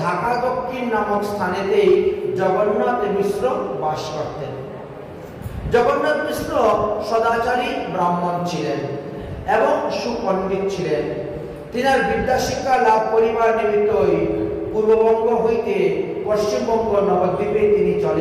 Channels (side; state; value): both; identical; correlation 1.00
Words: ঢাকা দক্ষিণ নামক স্থানেতেই জগন্নাথ মিশ্র বাস করতেন। জগন্নাথ মিশ্র সদাচারী ব্রাহ্মণ ছিলেন এবং সুপণ্ডিত ছিলেন। তিনার বিদ্যাশিক্ষা লাভ করিবার নিমিত্তই পূর্ববঙ্গ হইতে পশ্চিমবঙ্গ নবদ্বীপে তিনি